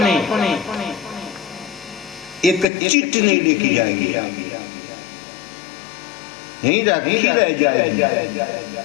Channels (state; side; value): drops out; right; at 2.7 s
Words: एक चिट नहीं लेके जाएंगे, यहीं रह जाएगी।